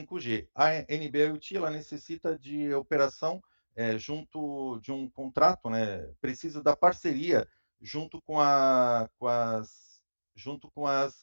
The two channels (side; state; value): both; inverted; correlation -1.00